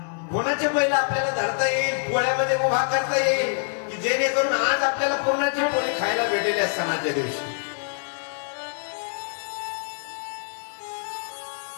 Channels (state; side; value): silent; right; digital silence